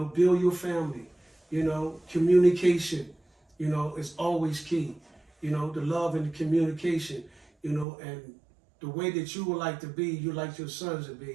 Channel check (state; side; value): drops out; left; at 7.9 s